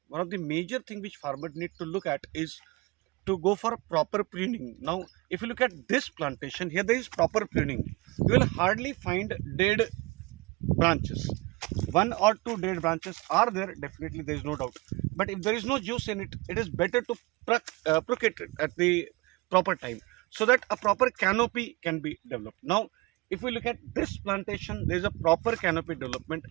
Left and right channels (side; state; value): left; quieter; 23.5 dB